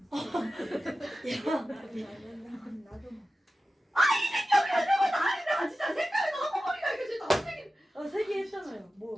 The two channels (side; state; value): both; normal; correlation 0.94